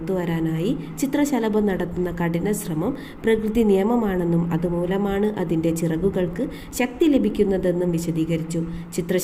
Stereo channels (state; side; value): identical; both; correlation 1.00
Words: വരാനായി ചിത്രശലഭം നടത്തുന്ന കഠിന ശ്രമം പ്രകൃതി നിയമമാണെന്നും അതുമൂലമാണ് അതിൻ്റെ ചിറകുകൾക്ക് ശക്തി ലഭിക്കുന്നതെന്നും വിശദീകരിച്ചു.